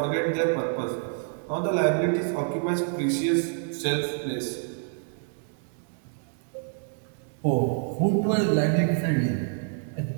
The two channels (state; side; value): silent; left; 60 dB below the other